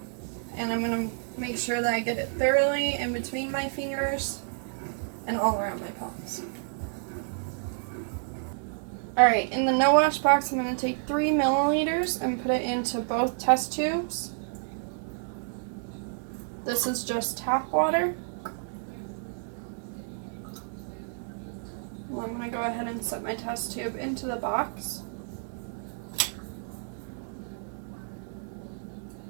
And I'm going to make sure that I get it thoroughly in between my fingers and all around my palms. Alright, in the no wash box, I'm going to take 3 milliliters and put it into both test tubes. This is just tap water. Well, I'm going to go ahead and set my test tube into the box.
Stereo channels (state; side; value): silent; left; digital silence